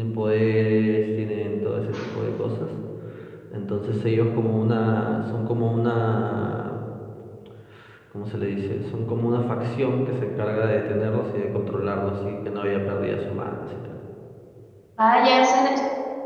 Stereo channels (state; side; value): identical; both; correlation 1.00